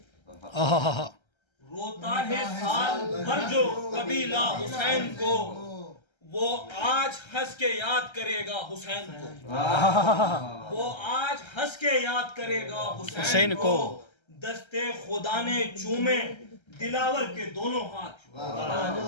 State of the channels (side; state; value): right; late; 1.3 ms